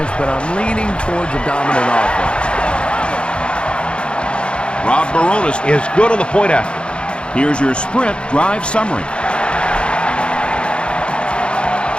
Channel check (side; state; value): right; late; 0.056 ms